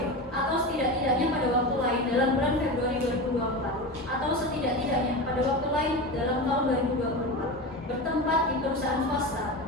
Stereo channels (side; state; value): both; normal; correlation 0.24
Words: atau setidak-tidaknya pada waktu lain dalam bulan Februari 2024 atau setidak-tidaknya pada waktu lain dalam tahun 2024 bertempat di perusahaan swasta